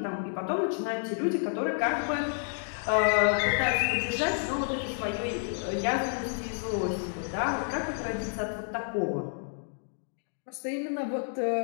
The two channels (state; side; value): silent; right; digital silence